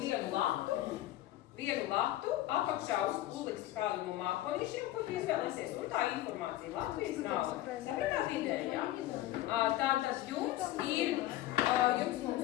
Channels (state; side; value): quieter; right; 14.8 dB